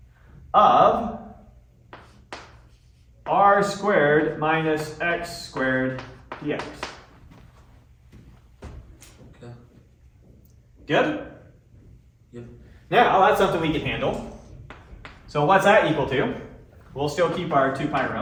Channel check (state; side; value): identical; both; correlation 1.00